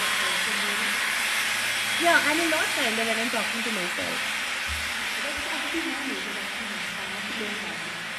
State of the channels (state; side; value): identical; both; correlation 1.00